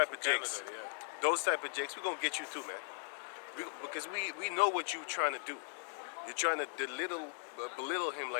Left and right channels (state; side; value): silent; right; 52 dB below the other